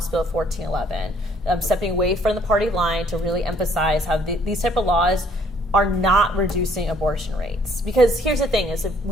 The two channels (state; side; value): normal; both; correlation 0.62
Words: Bill 1411, stepping away from the party line to really emphasize how these type of laws are not reducing abortion rates. Because here's the thing, is if